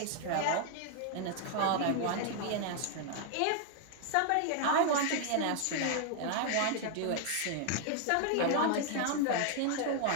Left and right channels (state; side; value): different; both; correlation 0.01